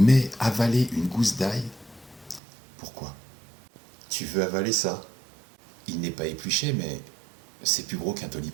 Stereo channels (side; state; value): left; drops out; at 2.4 s